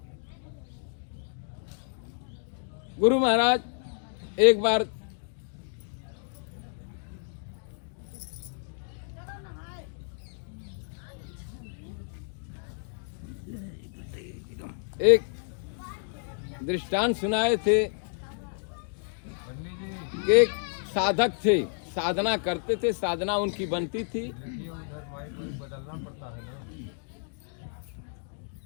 गुरु महाराज एक बार एक दृष्टांत सुनाए थे। एक साधक थे, साधना करते थे, साधना उनकी बनती थी।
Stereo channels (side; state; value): right; silent; digital silence